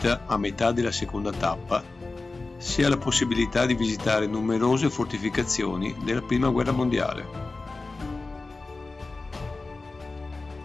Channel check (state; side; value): quieter; right; 3.6 dB